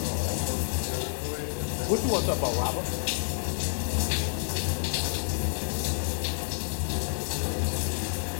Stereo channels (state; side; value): silent; right; 59 dB below the other